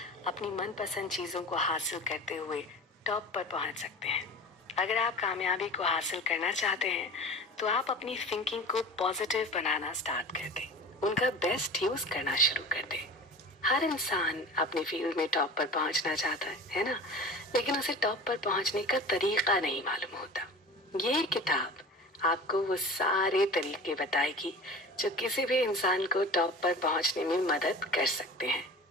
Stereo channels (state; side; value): normal; both; correlation 0.37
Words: अपनी मनपसंद चीज़ों को हासिल करते हुए टॉप पर पहुंच सकते हैं। अगर आप कामयाबी को हासिल करना चाहते हैं तो आप अपनी थिंकिंग को पॉजिटिव बनाना स्टार्ट कर दें, उनका बेस्ट यूज करना शुरू कर दें। हर इंसान अपने फील्ड में टॉप पर पहुंचना चाहता है ना, लेकिन उसे टॉप पर पहुंचने का तरीका नहीं मालूम होता। ये किताब आपको वो सारे तरीके बताएगी जो किसी भी इंसान को टॉप पर पहुंचने में मदद कर सकते हैं।